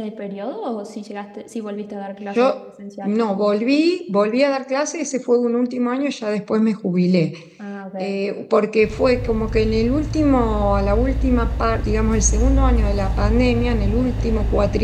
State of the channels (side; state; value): both; identical; correlation 1.00